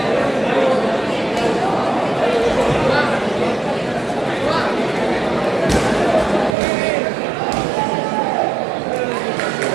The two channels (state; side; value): drops out; left; at 6.6 s